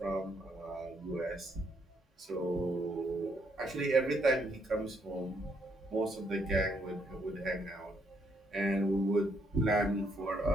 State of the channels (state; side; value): normal; both; correlation 0.73